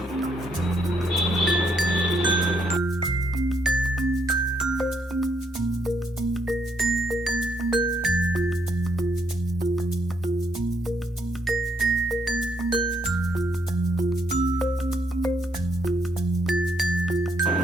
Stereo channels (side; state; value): both; normal; correlation 0.74